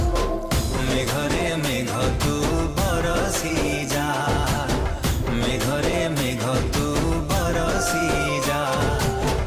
मेघरे मेघ तू बरसी जा मेघरे मेघ तू बरसी जा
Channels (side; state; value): both; identical; correlation 1.00